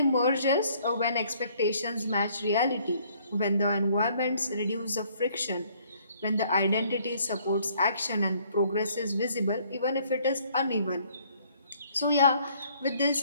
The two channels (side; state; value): both; inverted; correlation -0.62